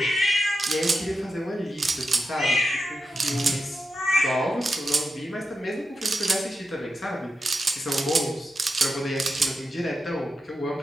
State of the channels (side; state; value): both; normal; correlation 0.88